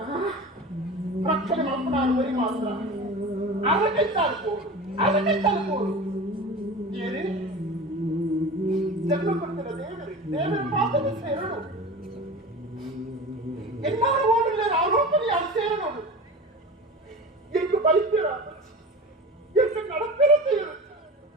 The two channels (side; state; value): both; normal; correlation 0.33